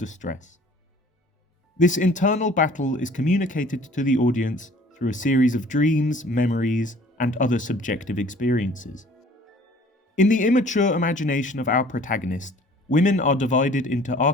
This internal battle is communicated to the audience through a series of dreams, memories, and other subjective experiences. In the immature imagination of our protagonist, women are divided into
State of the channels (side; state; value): both; normal; correlation 0.52